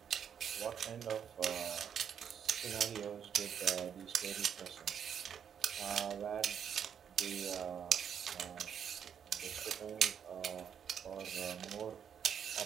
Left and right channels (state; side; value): quieter; left; 8.1 dB